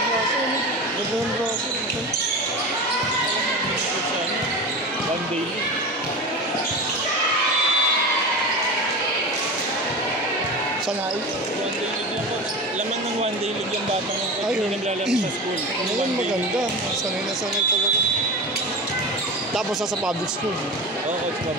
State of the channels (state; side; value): normal; both; correlation 0.28